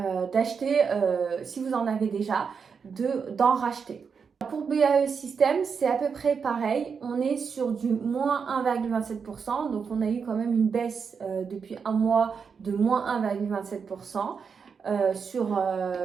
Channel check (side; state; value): left; quieter; 6.0 dB